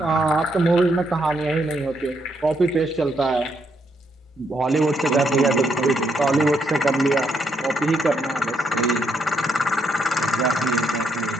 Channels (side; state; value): both; normal; correlation 0.76